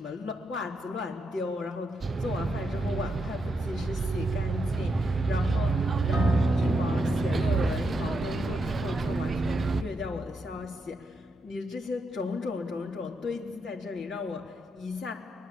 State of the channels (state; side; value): normal; both; correlation 0.82